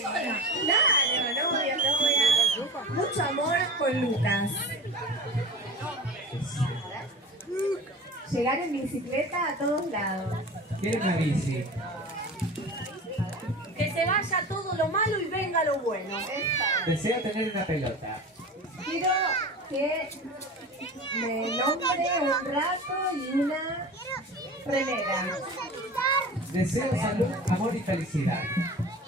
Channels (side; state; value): both; normal; correlation 0.34